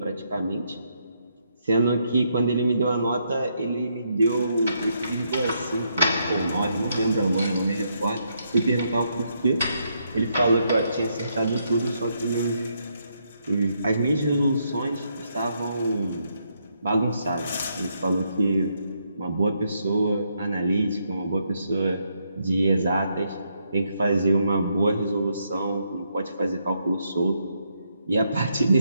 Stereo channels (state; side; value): inverted; both; correlation -0.77